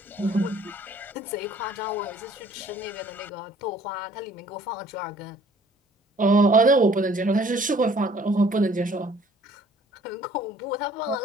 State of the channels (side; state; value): both; normal; correlation 0.56